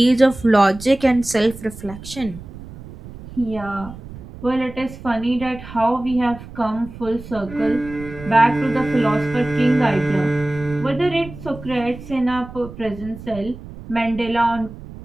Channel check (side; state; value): right; noise; rumble, 15 dB below the sound